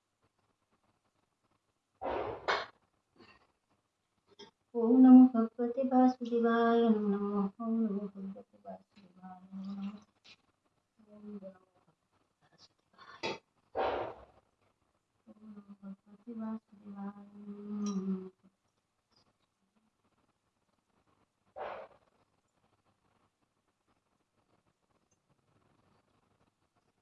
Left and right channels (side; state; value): both; identical; correlation 1.00